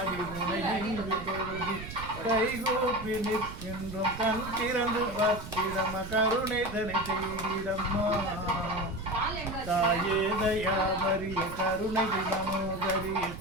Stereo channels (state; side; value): noise; right; rumble, 11 dB below the sound